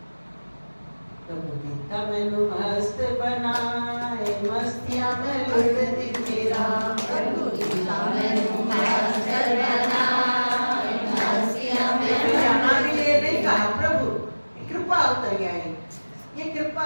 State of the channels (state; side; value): inverted; both; correlation -1.00